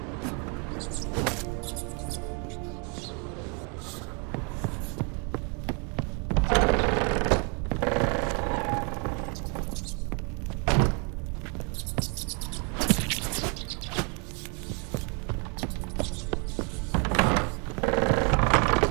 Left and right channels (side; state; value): left; quieter; 35.4 dB